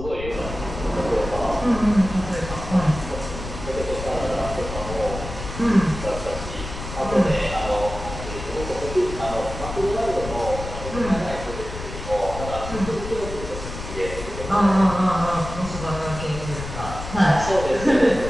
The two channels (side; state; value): left; noise; rumble, 9 dB below the sound